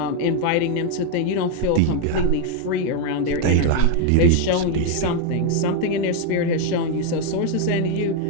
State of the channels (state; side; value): different; both; correlation 0.01